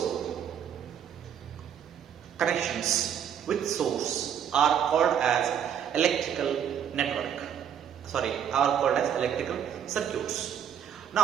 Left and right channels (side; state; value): left; quieter; 8.8 dB